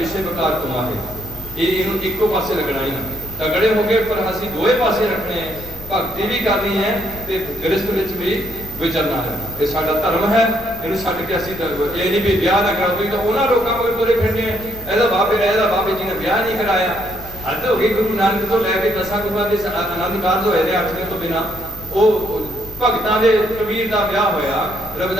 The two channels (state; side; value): noise; left; rumble, 16 dB below the sound